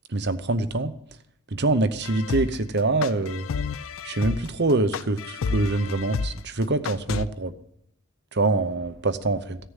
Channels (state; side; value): normal; both; correlation 0.28